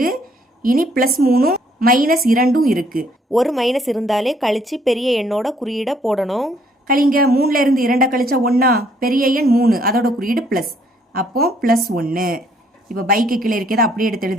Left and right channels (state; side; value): normal; both; correlation 0.66